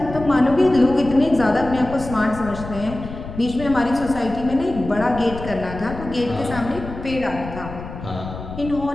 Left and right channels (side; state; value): left; noise; rumble, 11 dB below the sound